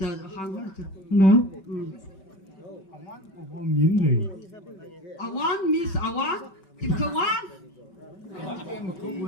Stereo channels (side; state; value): right; late; 5.2 ms